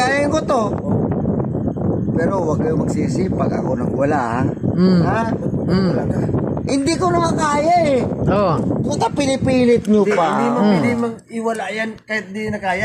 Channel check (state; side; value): identical; both; correlation 1.00